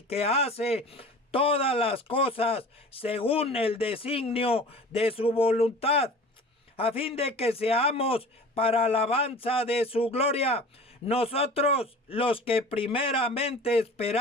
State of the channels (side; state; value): both; normal; correlation 0.41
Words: que hace todas las cosas según el designio de su voluntad, a fin de que seamos para alabanza de su gloria, nosotros los que primeramente